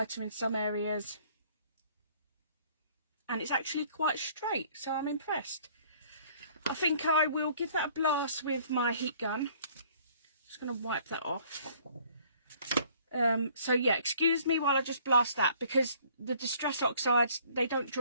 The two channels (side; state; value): both; inverted; correlation -0.58